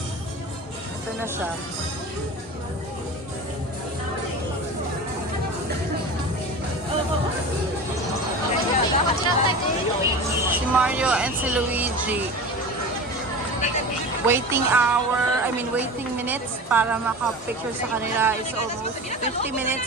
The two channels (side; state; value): both; normal; correlation 0.31